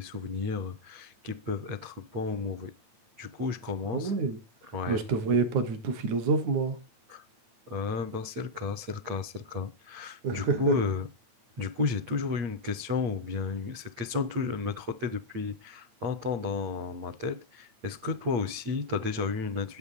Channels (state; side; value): late; left; 8.9 ms